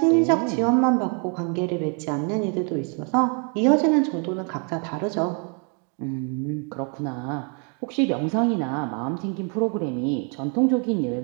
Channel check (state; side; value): quieter; left; 38.7 dB